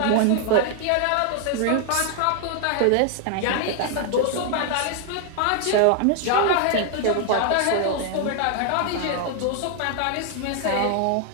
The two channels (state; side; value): different; both; correlation 0.00